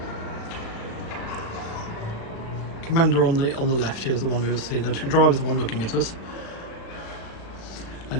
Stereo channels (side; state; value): right; late; 36 ms